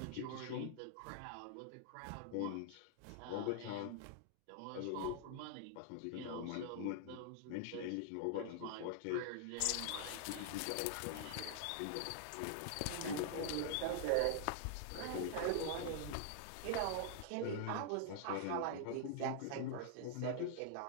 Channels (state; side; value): different; both; correlation -0.01